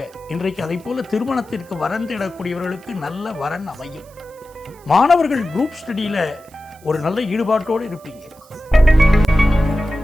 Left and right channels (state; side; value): noise; right; hiss, 27 dB below the sound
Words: இன்றைக்கு அதை போல திருமணத்திற்கு வரன் தேடக்கூடியவர்களுக்கு நல்ல வரன் அமையும். மாணவர்கள் குரூப் ஸ்டடியில் ஒரு நல்ல ஈடுபாட்டோடு இருப்பீங்க.